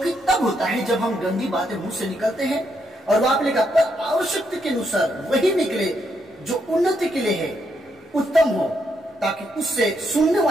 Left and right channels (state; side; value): normal; both; correlation 0.78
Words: तब होता है जब हम गंदी बातें मुंह से निकलते हैं और वहां पे लिखा पर आवश्यकता के अनुसार वही निकले जो उन्नति के लिए है, उत्तम हो, ताकि उससे सुनने